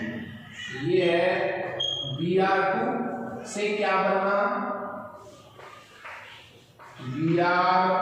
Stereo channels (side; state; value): both; identical; correlation 1.00